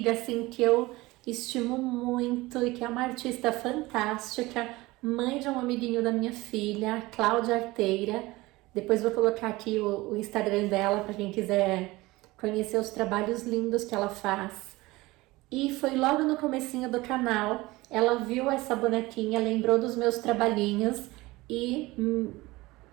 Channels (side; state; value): left; quieter; 20.5 dB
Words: assim, que eu estimo muito e que é uma artista fantástica, mãe de um amiguinho da minha filha, Cláudia Arteira. Depois vou colocar aqui o Instagram dela para quem quiser conhecer os trabalhos lindos que ela faz. E foi logo no comecinho do canal, ela viu essa bonequinha, lembrou dos meus trabalhinhos e